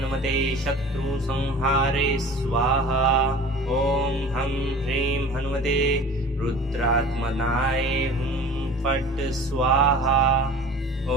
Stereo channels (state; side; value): normal; both; correlation 0.41